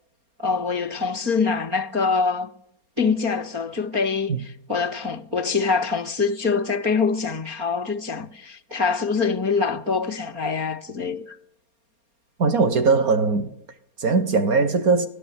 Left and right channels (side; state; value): left; late; 4.3 ms